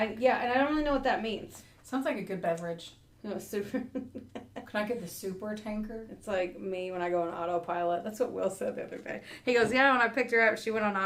and I don't really know what that means. Sounds like a good beverage. No, super. Can I get the super tanker? It's like me when I go on autopilot. That's what Will said the other day. He goes, yeah, when I picked her up, she went on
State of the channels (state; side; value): identical; both; correlation 1.00